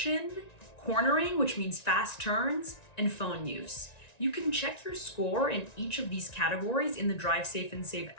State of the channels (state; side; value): late; right; 1.9 ms